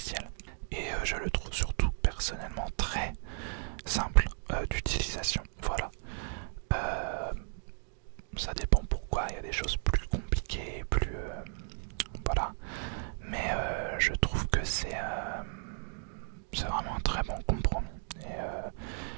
Et je le trouve surtout personnellement très simple d'utilisation. Voilà. Ça dépend pourquoi, il y a des choses plus compliquées, plus voilà. Mais je trouve que c'est vraiment un très bon compromis. Et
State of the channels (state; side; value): silent; left; 55 dB below the other